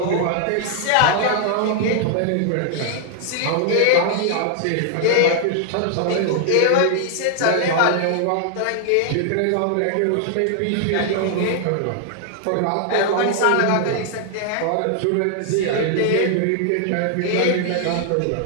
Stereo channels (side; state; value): both; different; correlation 0.00